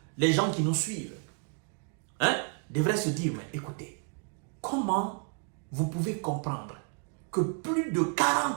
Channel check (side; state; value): left; quieter; 38.7 dB